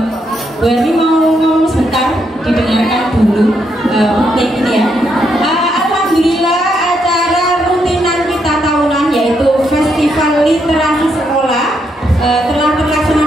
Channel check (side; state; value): both; normal; correlation 0.78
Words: Bu Ermi mau ngomong sebentar, didengarkan dulu ini ya. Alhamdulillah acara rutinan kita tahunan yaitu Festival Literasi Sekolah telah terlaksana